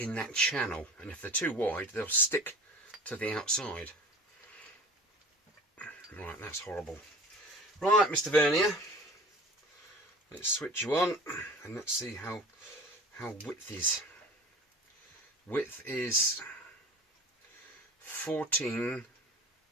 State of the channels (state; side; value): normal; both; correlation 0.40